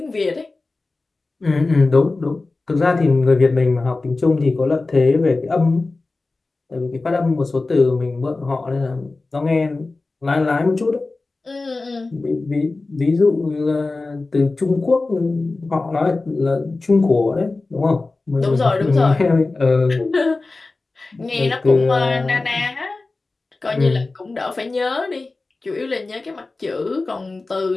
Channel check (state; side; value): quieter; right; 3.5 dB